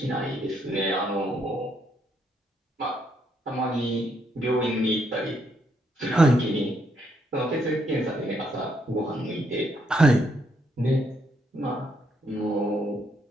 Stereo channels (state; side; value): normal; both; correlation 0.75